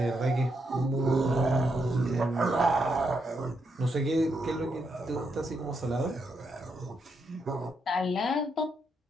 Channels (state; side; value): normal; both; correlation 0.80